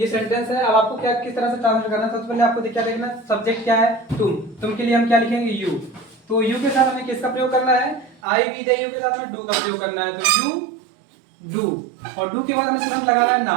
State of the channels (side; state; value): left; drops out; at 8.2 s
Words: सेंटेंस है। अब आपको क्या किस तरह से ट्रांसलेट करना है, सबसे पहले आपको क्या देखना, सब्जेक्ट क्या है, तुम के लिए हम क्या लिखेंगे, यू। तो यू के साथ हमें किसका प्रयोग करना है, आई, वी, दे, यू के साथ हमें डू का प्रयोग करना है। तो यू डू, और डू के बाद हमें तुरंत लगाना है